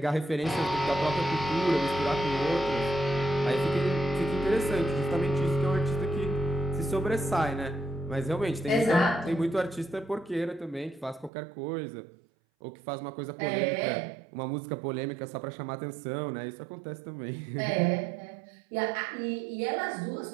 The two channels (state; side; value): drops out; left; at 11.3 s